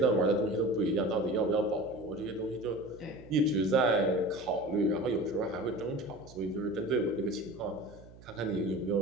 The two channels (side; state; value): right; noise; hum, 20 dB below the sound